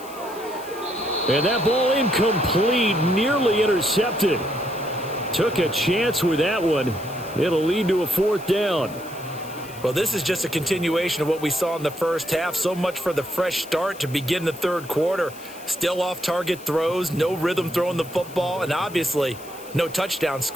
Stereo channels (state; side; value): noise; left; hiss, 19 dB below the sound